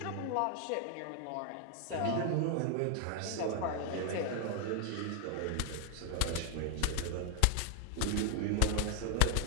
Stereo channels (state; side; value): different; both; correlation 0.00